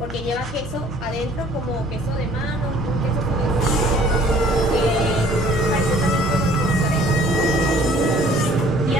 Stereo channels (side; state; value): both; normal; correlation 0.55